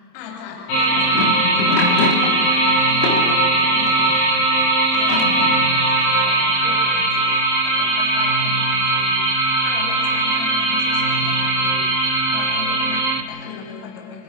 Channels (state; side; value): late; right; 27 ms